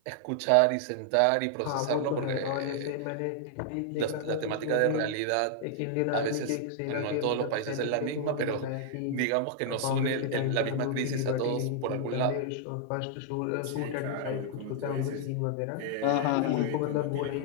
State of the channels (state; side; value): different; both; correlation -0.01